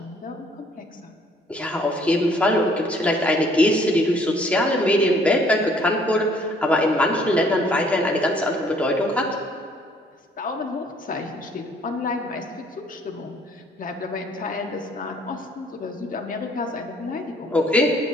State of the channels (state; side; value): normal; both; correlation 0.61